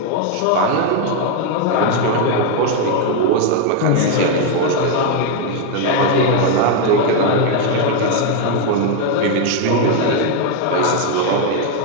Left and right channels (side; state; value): both; different; correlation 0.01